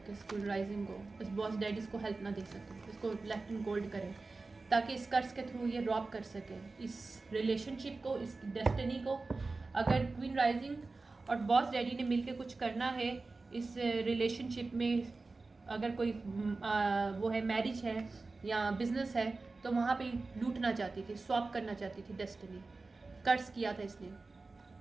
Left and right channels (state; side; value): quieter; left; 3.7 dB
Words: स्कूल राइजिंग को, इस बॉस डैडी इसको हेल्प ना दे सके, इसको लेफ्ट एंड गोल्ड करे ताकि इस कर्ज के थ्रू ये रॉब कर सके इस रिलेशनशिप को, इस डेस्टिनी को। अगर क्वीन राइजिंग और बॉस डैडी ने मिलकर कुछ करना है इस रिलेशनशिप में, अगर कोई वो है, मैरिज है या बिजनेस है, तो वहाँ पे लूटना चाहती थी, स्वैप करना चाहती थी डेस्टिनी। कर्ज किया था इसने,